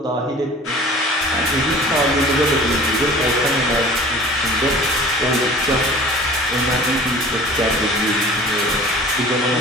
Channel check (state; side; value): normal; both; correlation 0.44